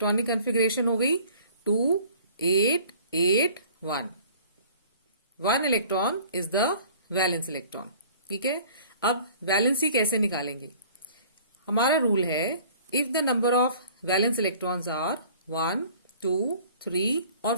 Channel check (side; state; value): both; inverted; correlation -0.50